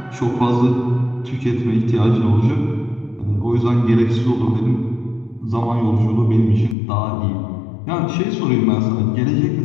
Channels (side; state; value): right; drops out; at 6.8 s